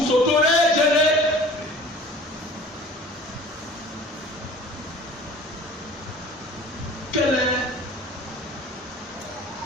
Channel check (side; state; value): both; normal; correlation 0.45